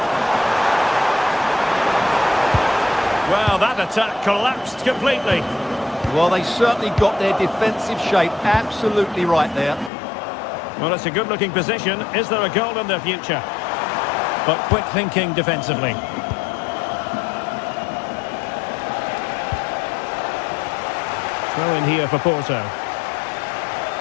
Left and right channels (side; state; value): right; drops out; at 9.9 s